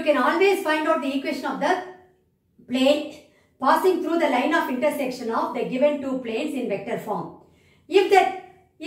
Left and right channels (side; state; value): both; identical; correlation 1.00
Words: can always find out the equation of the plane passing through the line of intersection of the given two planes in vector form. If